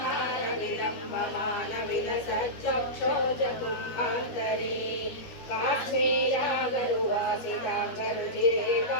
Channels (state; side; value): late; right; 12 ms